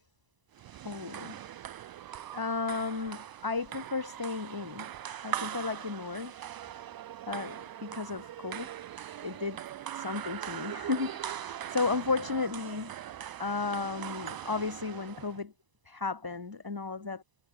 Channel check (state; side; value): late; left; 1.0 ms